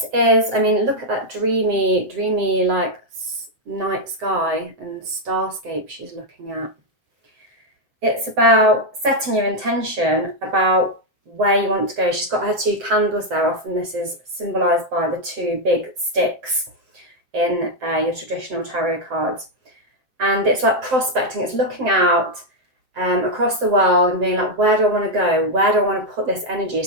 is, I mean, look at that dreamy like night sky and starscape she's looking at. It's about setting your intention about where you want to go. She's got her 2 candles there. Often this is symbolised by the 2 big sticks in your traditional tarot cards. And it's like prospecting. It's looking out across the world and being like, where do I want to go? Where do I want to put this energy?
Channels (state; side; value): late; left; 7.8 ms